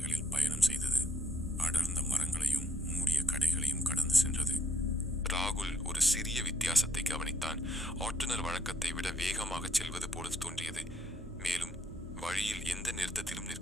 பயணம் செய்தது. அடர்ந்த மரங்களையும் மூடிய கடைகளையும் கடந்து சென்றது. ராகுல் ஒரு சிறிய வித்தியாசத்தை கவனித்தான். ஓட்டுநர் வழக்கத்தை விட வேகமாக செல்வது போல தோன்றியது. மேலும் வழியில் எந்த நிறுத்தத்திலும்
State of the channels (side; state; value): both; normal; correlation 0.70